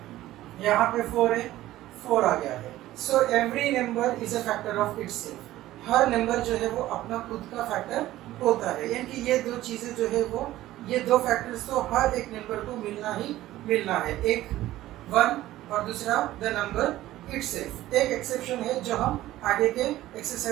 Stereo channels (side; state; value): left; quieter; 15.2 dB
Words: यहाँ पे 4 है, 4 आ गया है। So every number is a factor of itself. Her number जो है वो अपना खुद का फैक्टर होता है। यानी कि ये दो चीजें जो है वो, ये दो फैक्टर्स तो हर एक नंबर को मिलना ही मिलना है, एक 1 और दूसरा द नंबर इटसेल्फ। एक एक्सेप्शन है जो हम आगे के